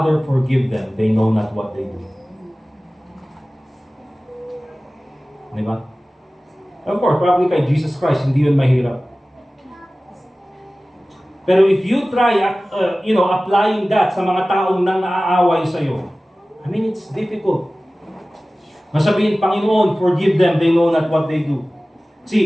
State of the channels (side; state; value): both; normal; correlation 0.97